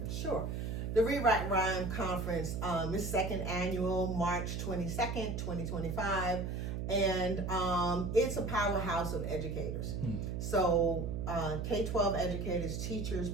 Sure. The Read, Write, Rhyme conference is second annual, March 22nd, 2025. And it's a powerhouse of educators. So K-12 educators, teachers,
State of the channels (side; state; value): right; noise; hum, 3 dB below the sound